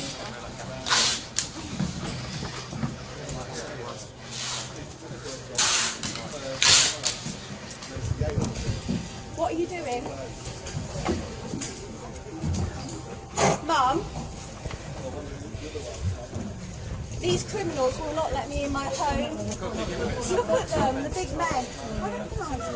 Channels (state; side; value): identical; both; correlation 1.00